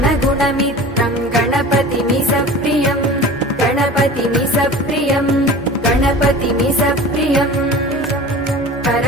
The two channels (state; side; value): normal; both; correlation 0.38